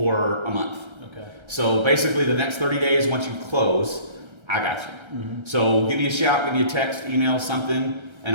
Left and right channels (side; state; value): left; late; 1.3 ms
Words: a month. Okay. So basically the next 30 days, once you close, I got you. Mm-hmm. So give me a shout, give me a text, email, something,